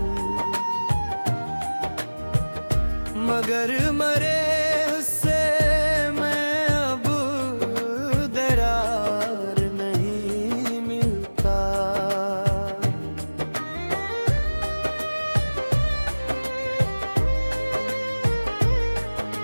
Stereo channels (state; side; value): inverted; both; correlation -1.00